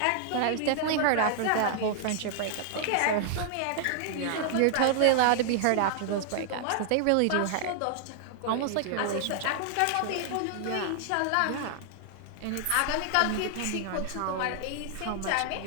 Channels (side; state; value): both; different; correlation -0.01